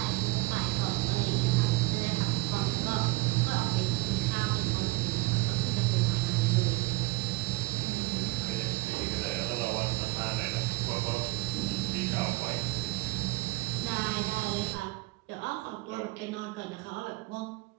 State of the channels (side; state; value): left; quieter; 23.8 dB